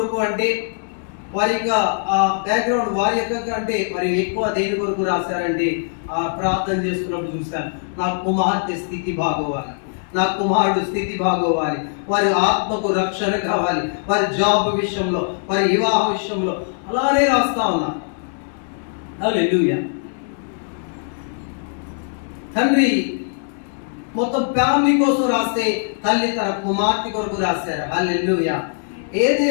అంటే వారి యొక్క బ్యాక్గ్రౌండ్ వారి యొక్క అంటే మరి ఎక్కువ దేని కొరకు రాశారంటే ప్రార్థన చేస్తున్నప్పుడు చూశాను, నా కుమార్తె స్థితి బాగోవాలి, నా కుమారుడు స్థితి బాగోవాలి, వారి ఆత్మకు రక్షణ కావాలి, వారి జాబ్ విషయంలో, వారి వివాహ విషయంలో అలానే రాస్తా ఉన్నా. హల్లెలూయా. తండ్రి మొత్తం ఫ్యామిలీ కోసం రాస్తే తల్లి తన కుమార్తె కొరకు రాశారు. హల్లెలూయా.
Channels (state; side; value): silent; right; 65 dB below the other